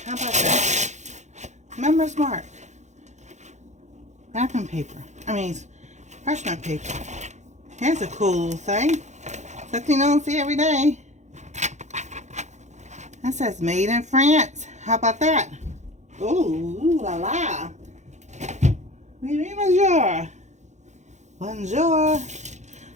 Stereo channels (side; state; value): left; late; 0.34 ms